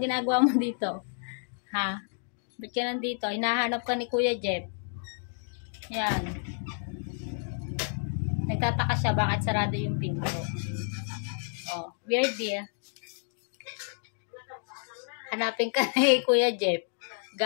ginagawa mo dito? Ha? Ba't ka nandito? Hinahanap ka ni Kuya Jeff. Yan. Nagtataka siya bakit sarado yung pinto. Oh, Weirdy. Hanapin ka ni Kuya Jeff.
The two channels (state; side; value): silent; right; 58 dB below the other